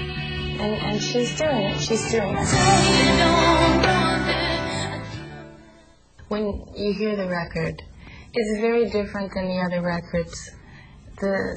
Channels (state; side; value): identical; both; correlation 1.00